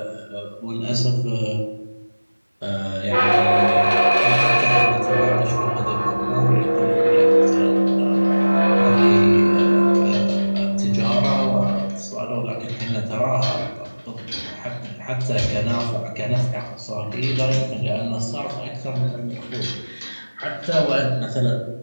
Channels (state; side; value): inverted; both; correlation -1.00